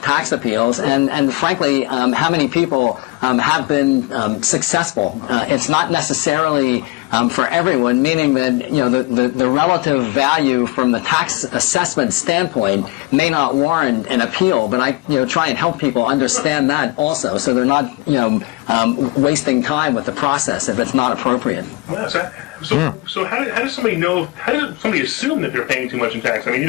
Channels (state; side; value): quieter; right; 22.2 dB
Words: tax appeals, and frankly, how many people have been successful. It's not necessarily for everyone, meaning that the relative value from the tax assessment standpoint may not warrant an appeal, but I try and help people understand that also, so they're not wasting time with the process if it's not appropriate. Well, so how does somebody know? How does somebody assume that they're paying too much in tax? I mean,